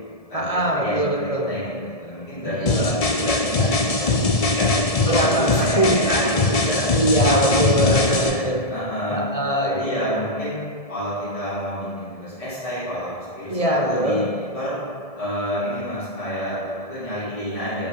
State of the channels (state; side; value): late; right; 1.7 ms